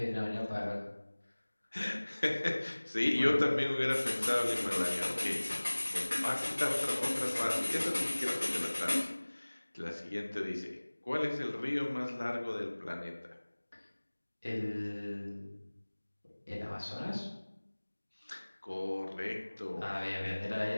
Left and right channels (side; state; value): both; inverted; correlation -1.00